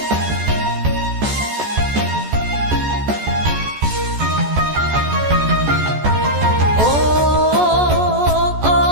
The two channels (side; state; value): left; late; 14 ms